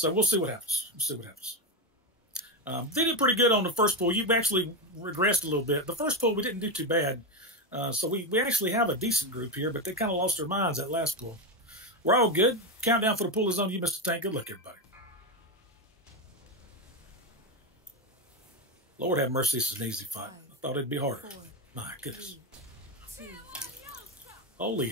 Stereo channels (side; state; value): both; normal; correlation 0.11